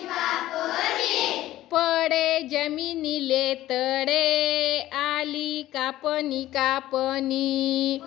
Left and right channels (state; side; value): quieter; right; 14.9 dB